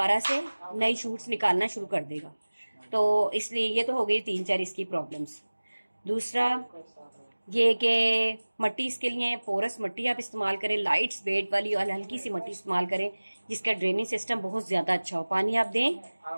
से नई शूट्स निकालना शुरू कर देगा। तो इसलिए ये तो हो गई 3-4 इसकी प्रॉब्लम्स। दूसरा ये कि मट्टी इसके लिए पोरस मट्टी आप इस्तेमाल करें, लाइट वेट वाली और हल्की सी मट्टी इस्तेमाल करें, जिसका ड्रेनिंग सिस्टम बहुत ज़्यादा अच्छा हो। पानी आप दें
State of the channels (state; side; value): inverted; both; correlation -1.00